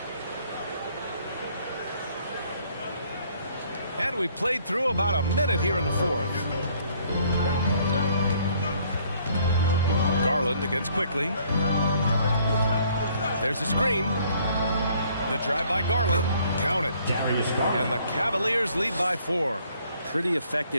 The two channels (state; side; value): inverted; both; correlation -0.62